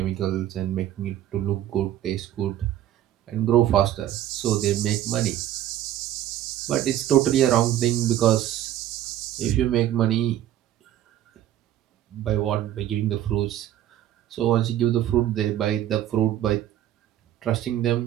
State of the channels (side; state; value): left; quieter; 12.2 dB